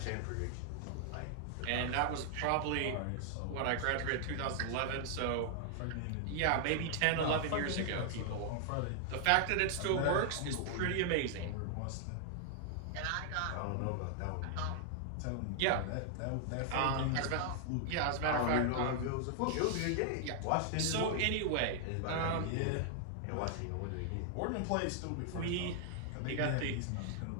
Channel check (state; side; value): different; both; correlation -0.01